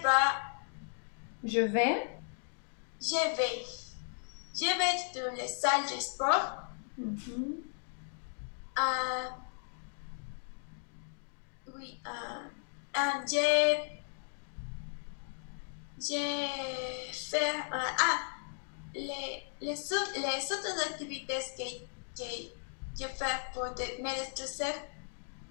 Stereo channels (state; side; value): silent; right; digital silence